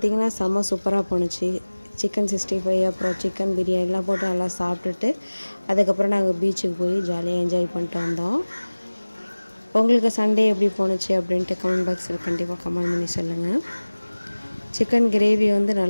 செம்ம சூப்பராக போணுச்சு. சிக்கன் 65 அப்புறம் சிக்கன் பிரியாணிலாம் போட்டு நல்லா சாப்பிட்டுட்டு அதுக்கப்புறம் நாங்கள் பீச்சுக்கு போய் ஜாலியாக என்ஜாய் பண்ணிட்டு வந்தோம். உங்களுக்கு சண்டே எப்படி போணுச்சு அப்படின்ட்டு கமெண்ட் பாக்ஸில் கண்டிப்பாக கமெண்ட் பண்ணி சொல்லுங்கள். சிக்கன் கிரேவி வந்து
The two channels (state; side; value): inverted; both; correlation -1.00